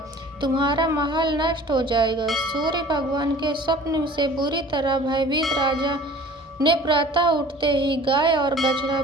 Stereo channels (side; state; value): both; normal; correlation 0.46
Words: तुम्हारा महल नष्ट हो जाएगा। सूर्य भगवान के स्वप्न से बुरी तरह भयभीत राजा ने प्रातः उठते ही गाय और बछड़ा